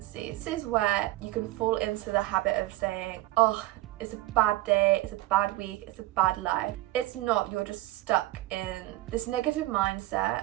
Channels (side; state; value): left; quieter; 17.3 dB